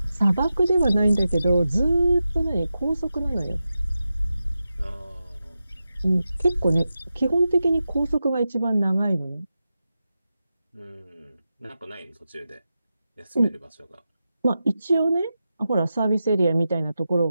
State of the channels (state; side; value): inverted; both; correlation -0.91